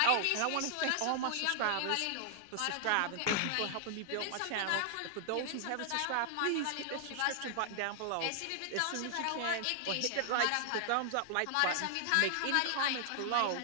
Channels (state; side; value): different; both; correlation -0.01